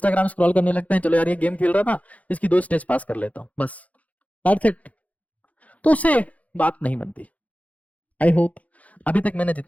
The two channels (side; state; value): right; late; 0.069 ms